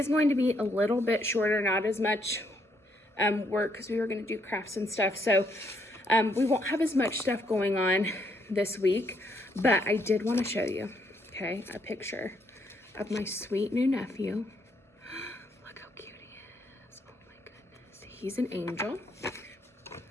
going to be a little bit shorter, not as much work because we were going to do crafts and stuff. So we won't have as much stuff going on this week, but I did want to show you, okay, a picture of my sweet new nephew. Look how cute he is. Oh my goodness. He's an angel.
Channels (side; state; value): both; normal; correlation 0.73